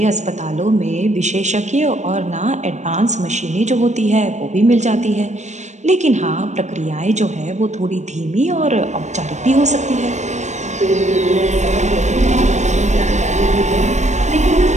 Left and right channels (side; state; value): left; late; 0.34 ms